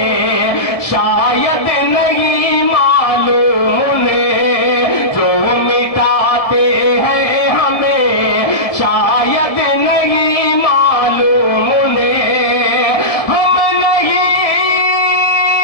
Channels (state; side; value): late; right; 1.7 ms